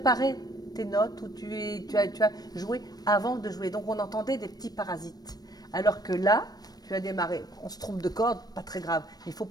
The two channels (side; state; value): right; late; 0.19 ms